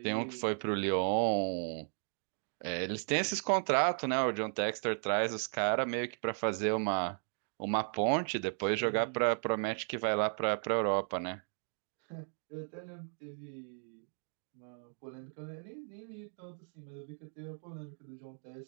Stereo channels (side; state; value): left; silent; 54 dB below the other